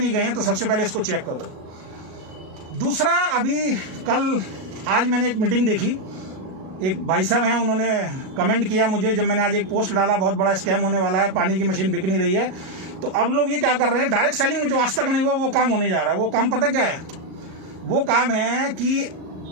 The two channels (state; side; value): late; left; 38 ms